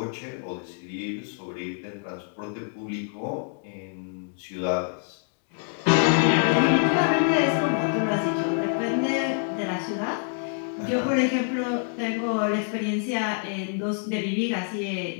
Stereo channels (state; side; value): silent; right; 61 dB below the other